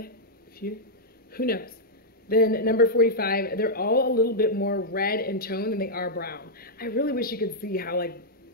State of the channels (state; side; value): normal; both; correlation -0.06